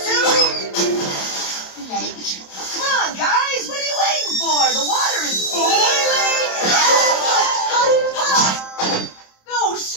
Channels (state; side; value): late; right; 27 ms